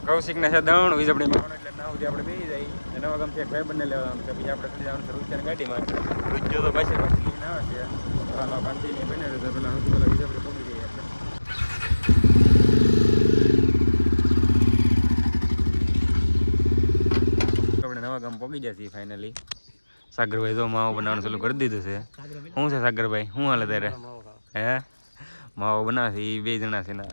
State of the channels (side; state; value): both; inverted; correlation -1.00